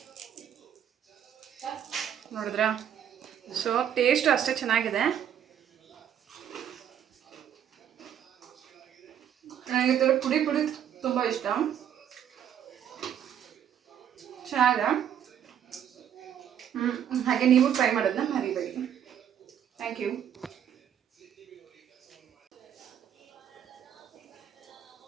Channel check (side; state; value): left; quieter; 9.5 dB